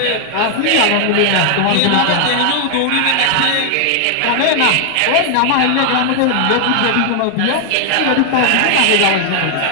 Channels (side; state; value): both; different; correlation 0.00